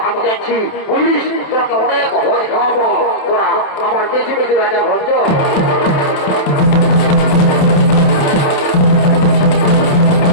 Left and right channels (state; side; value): late; right; 28 ms